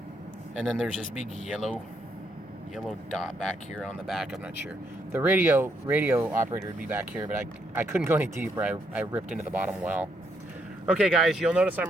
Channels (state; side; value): normal; both; correlation 0.75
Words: And then there's this big yellow dot back here on the back. I'm not sure. The radio operator would be back here, but I couldn't go any deeper. I ripped into the bottom well. Okay, guys, you'll notice